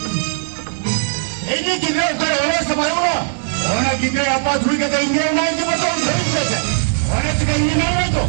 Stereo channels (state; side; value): silent; left; digital silence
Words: ये किधर उतर होना समारोह होना किधर आप थोड़ी कहते इंजीनियर ना जो बताओ सही से होना चाहिए इंजीनियर ना तो